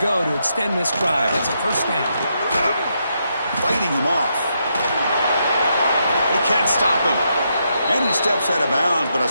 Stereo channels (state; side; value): inverted; both; correlation -0.80